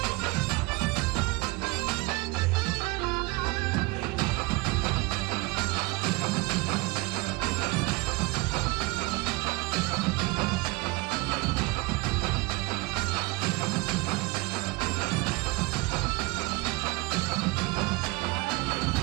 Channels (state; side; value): quieter; left; 23.7 dB